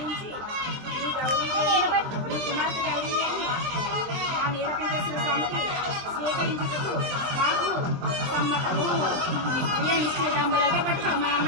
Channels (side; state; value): left; late; 23 ms